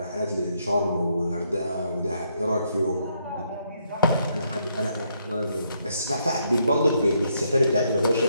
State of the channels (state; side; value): inverted; both; correlation -0.74